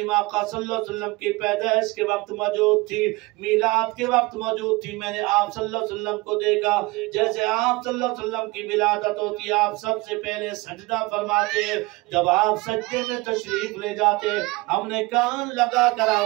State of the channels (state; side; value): quieter; left; 23.1 dB